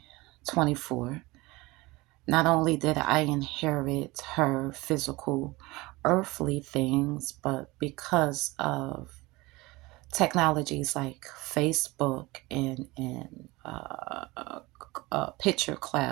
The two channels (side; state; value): left; quieter; 21.8 dB